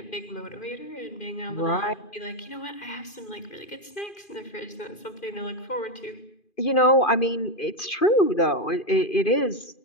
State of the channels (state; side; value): late; right; 2.5 ms